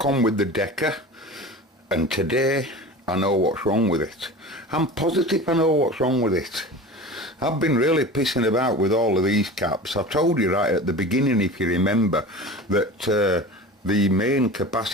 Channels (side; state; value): both; normal; correlation 0.34